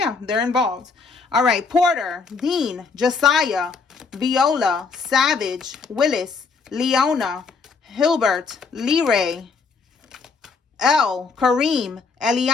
they're involved. All right. Porter, Dean, Josiah, Viola, Savage, Willis, Leona, Hilbert, Leray, Elle, Kareem,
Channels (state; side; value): quieter; right; 4.8 dB